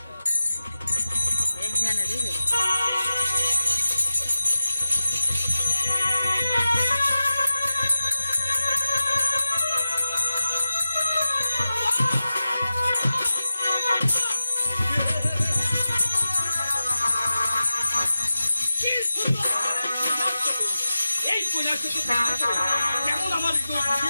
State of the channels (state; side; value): inverted; both; correlation -0.94